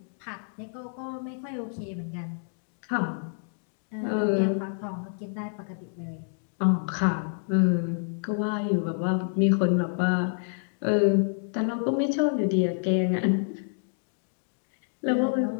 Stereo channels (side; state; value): right; silent; digital silence